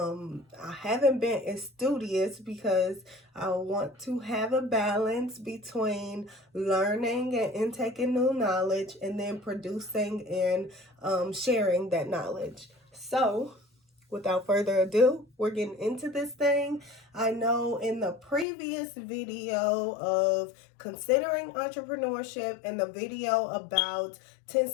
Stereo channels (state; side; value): drops out; right; at 18.4 s